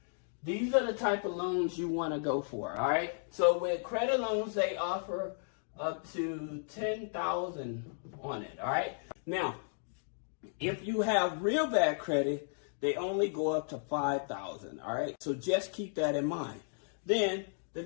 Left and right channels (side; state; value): right; silent; digital silence